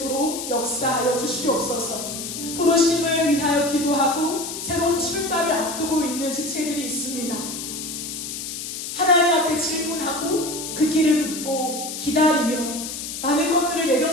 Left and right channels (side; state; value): left; noise; hiss, 7 dB below the sound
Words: 역사하여 주시옵소서. 부르심을 위하여 기도하고 새로운 출발을 앞두고 있는 지체들이 있습니다. 하나님 앞에 질문하고 그 길을 묻고 기다리며 많은 것들을